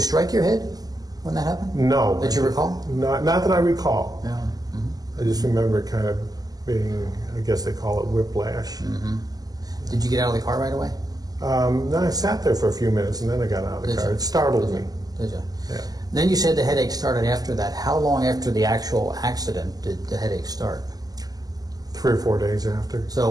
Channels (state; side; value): late; left; 0.18 ms